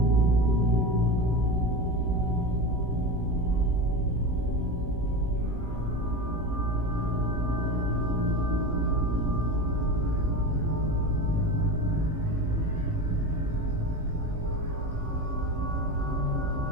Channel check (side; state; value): left; late; 18 ms